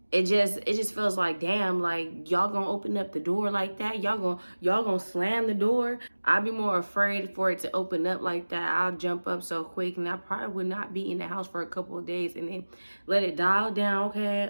it just feels like, damn, like y'all gonna open up the door like that? Y'all gonna slam the door? I'd be more afraid for it to open up like that. I'll jump up so quick, and I probably would not be in the house for a couple of days and then let it dial down. Okay,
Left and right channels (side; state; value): both; inverted; correlation -1.00